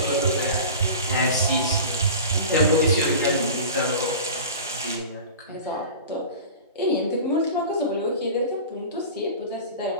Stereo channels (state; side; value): inverted; both; correlation -0.36